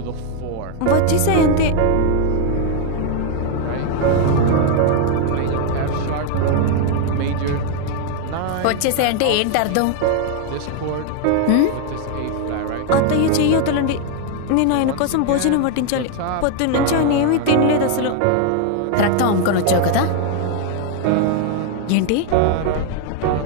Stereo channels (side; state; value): both; different; correlation 0.00